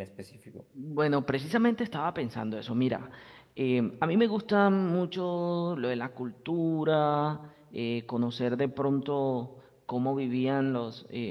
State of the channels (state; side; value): identical; both; correlation 1.00